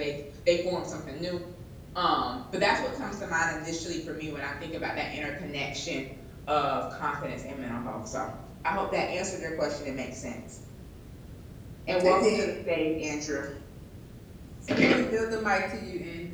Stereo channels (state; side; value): identical; both; correlation 1.00